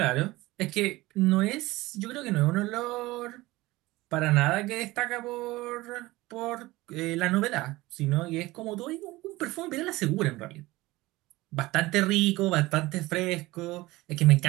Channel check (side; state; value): left; quieter; 19.6 dB